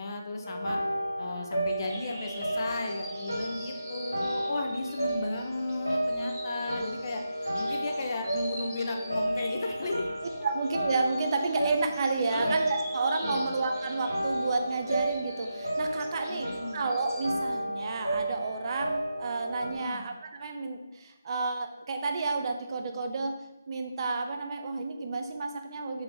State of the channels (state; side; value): inverted; both; correlation -0.85